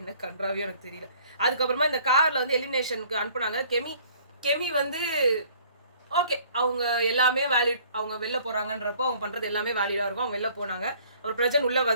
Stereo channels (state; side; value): inverted; both; correlation -0.56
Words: என்ன கன்றாவியோ எனக்கு தெரியல. அதுக்கப்புறமா இந்த கார்ல வந்து எலிமினேஷனுக்கு அனுப்புனாங்க. கெமி வந்து ஓகே, அவங்க எல்லாமே வேலிட், அவங்க வெளில போறாங்கன்றப்போ அவங்க பண்றது எல்லாமே வேலிடா இருக்கும். அவங்க வெளில போனாங்க. அவர் பிரஜன் உள்ள